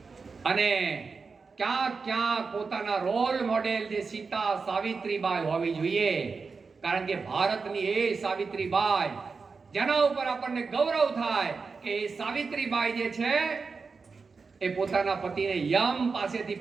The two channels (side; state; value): left; quieter; 4.7 dB